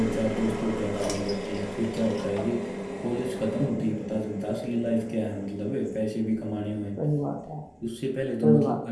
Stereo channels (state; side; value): identical; both; correlation 1.00